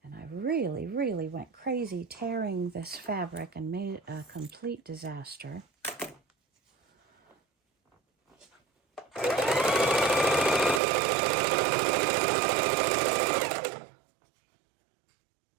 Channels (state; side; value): drops out; left; at 10.8 s